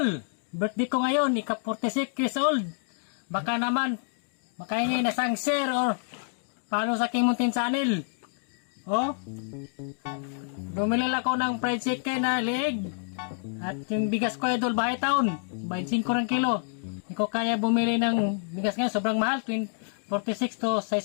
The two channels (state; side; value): silent; right; digital silence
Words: birthday ko ngayon, ika-46 years old. Baka naman, makahingi na sang share or paano sa aking muntin channel. Oh, bumili ako ng fried chicken na liig. At yung bigas ko idol, bahay taon, 25 ring kilo. Hindi ko kaya bumili ng bigas ngayon, sobrang mahal, 46 to